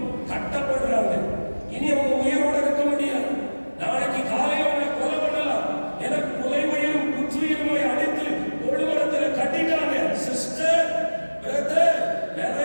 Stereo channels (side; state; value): both; inverted; correlation -1.00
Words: கட்டப்படுறாங்க. இனி அவங்க உயிரோட இருக்க முடியாது. நாளைக்கு காலையில் அவங்களை கொலை பண்ணலாம். எனக்கு கொலை உயிரும் குற்றுயிருமாய் அடித்து தொழுமரத்தில் கட்டிட்டாங்க. சிஸ்டர், பிரதர்,